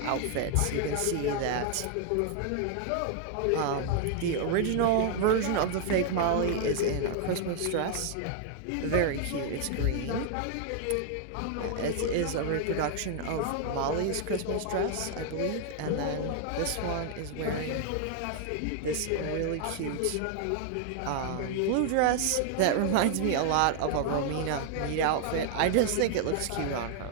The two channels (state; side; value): different; both; correlation 0.00